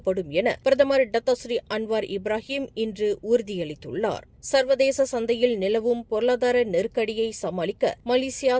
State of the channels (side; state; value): both; identical; correlation 1.00